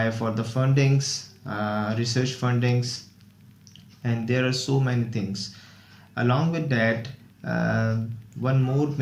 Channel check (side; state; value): both; identical; correlation 1.00